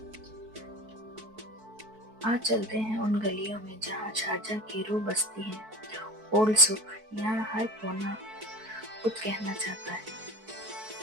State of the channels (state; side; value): late; left; 4.6 ms